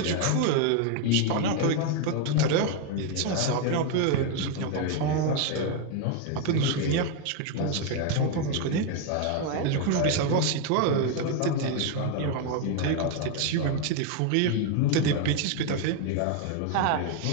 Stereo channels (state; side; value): different; both; correlation 0.01